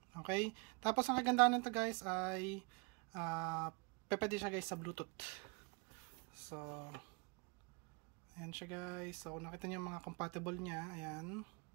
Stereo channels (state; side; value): quieter; left; 32.6 dB